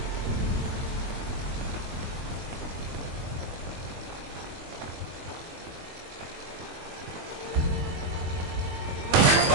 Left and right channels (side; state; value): left; late; 22 ms